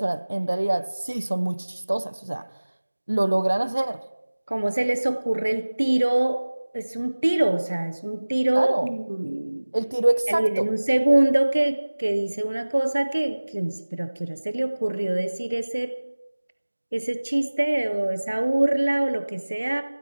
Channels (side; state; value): both; inverted; correlation -1.00